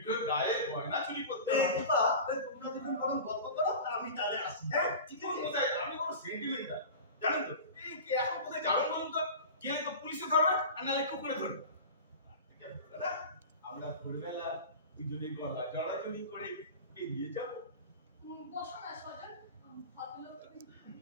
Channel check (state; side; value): inverted; both; correlation -0.33